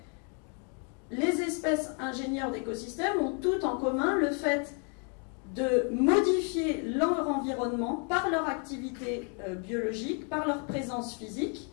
les espèces ingénieurs d'écosystèmes ont tout en commun le fait de modifier leur environnement par leur activité biologique, par leur présence physique,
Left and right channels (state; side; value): quieter; right; 38.9 dB